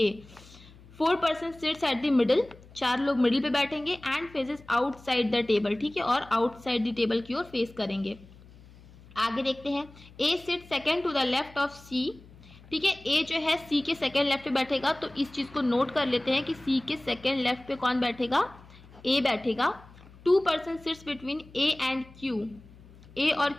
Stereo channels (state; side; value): noise; left; hum, 22 dB below the sound